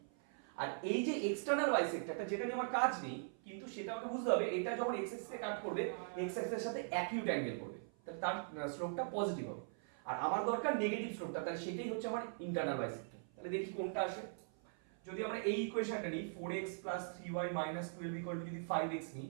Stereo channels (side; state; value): left; silent; 51 dB below the other